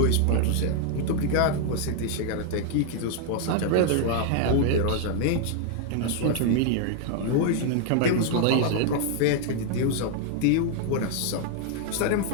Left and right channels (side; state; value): both; different; correlation 0.00